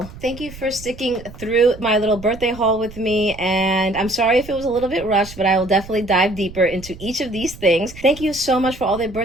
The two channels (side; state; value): right; noise; rumble, 16 dB below the sound